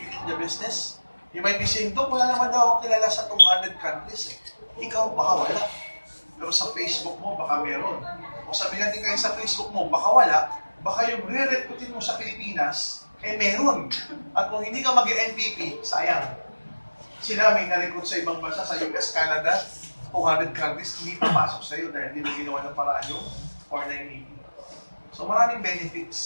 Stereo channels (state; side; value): inverted; both; correlation -1.00